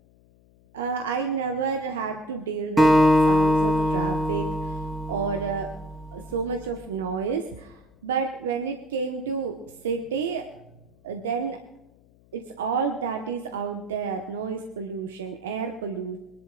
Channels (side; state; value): left; noise; hum, 29 dB below the sound